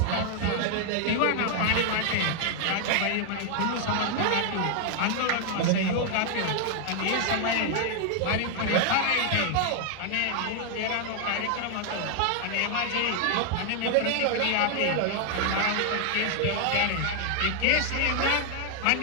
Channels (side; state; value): both; different; correlation 0.00